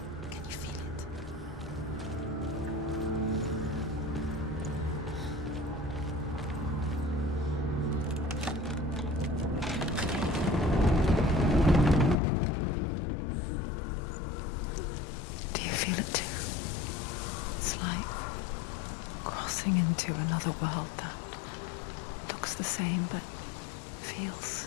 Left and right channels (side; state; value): right; drops out; at 12.2 s